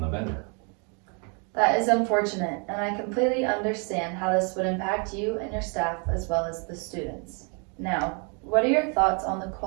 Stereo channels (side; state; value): left; quieter; 36.5 dB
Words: the vendor. That is unfortunate, and I completely understand how this would impact you and your staff as well as the students. Now, what are your thoughts on the